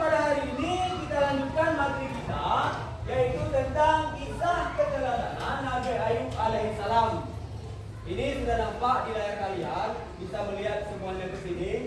hari ini kita lanjutkan materi kita, yaitu tentang kisah keteladanan Nabi Ayub alaihissalam. Ini sudah nampak di layar kalian, bisa melihat semuanya ke sini.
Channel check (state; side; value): identical; both; correlation 1.00